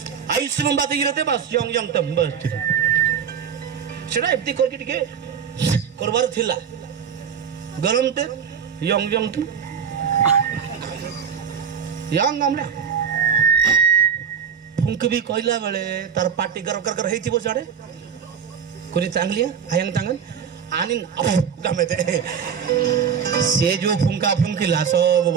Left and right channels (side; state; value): left; quieter; 7.4 dB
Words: Ayush में बात गिरते बस young तंबल सेटा एप्ती करके टिके करबार थिला गरम ते यंग तू यंग हमले फुंक भी कहला बेले तार पार्टी कर हेतिबो साडे कोनी चांगली आयंग तांगन आनिन गमे ते से जो फुंका फुंकिला सब